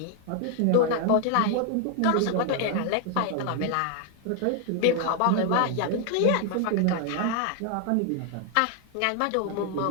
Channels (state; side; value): different; both; correlation 0.00